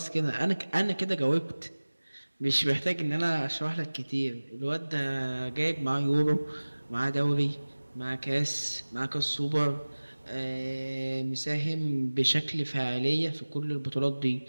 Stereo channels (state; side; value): inverted; both; correlation -1.00